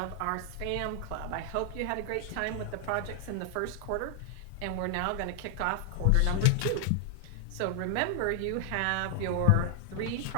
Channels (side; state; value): both; different; correlation 0.00